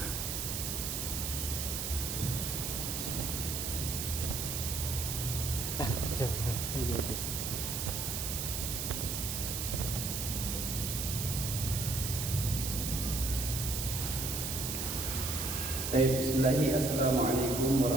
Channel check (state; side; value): noise; right; hiss, 2 dB below the sound